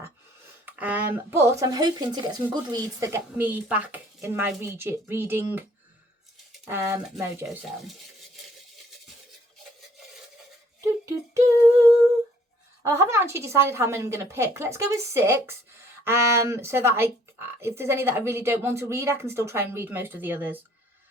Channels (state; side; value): normal; both; correlation 0.61